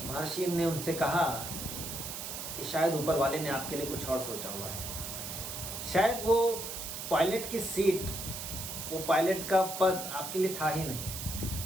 महर्षि ने उनसे कहा कि शायद ऊपर वाले ने आपके लिए कुछ और सोचा हुआ है। शायद वो पायलट की सीट, वो पायलट का पद आपके लिए था ही नहीं।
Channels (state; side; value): noise; right; hiss, 6 dB below the sound